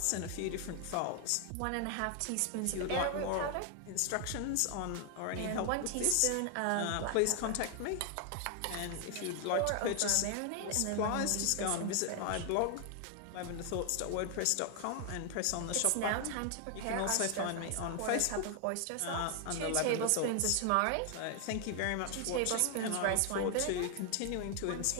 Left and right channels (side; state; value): both; different; correlation 0.00